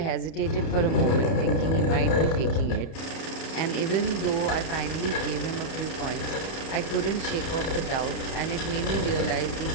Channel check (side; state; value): right; late; 31 ms